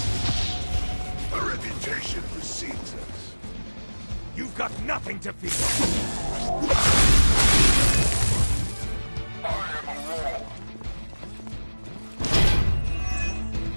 Our reputation precedes us. You've got nothing to fear! I am a wall.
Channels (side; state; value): both; inverted; correlation -1.00